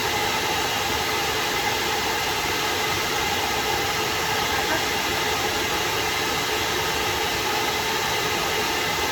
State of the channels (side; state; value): both; identical; correlation 1.00